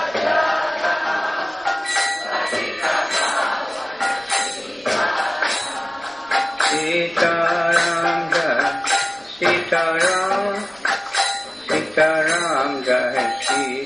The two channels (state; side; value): noise; right; rumble, 30 dB below the sound